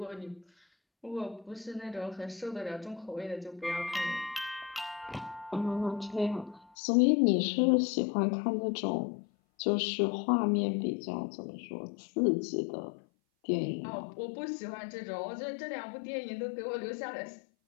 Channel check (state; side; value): drops out; right; at 6.7 s